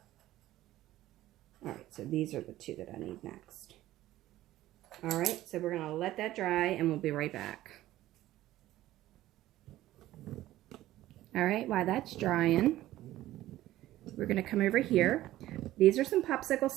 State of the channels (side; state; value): left; quieter; 15.1 dB